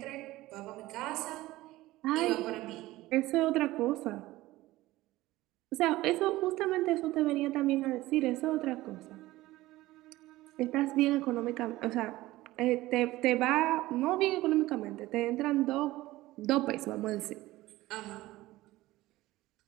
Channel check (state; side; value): quieter; left; 17.6 dB